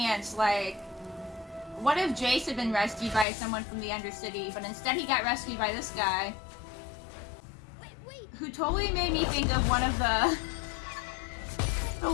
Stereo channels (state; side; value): drops out; right; at 3.2 s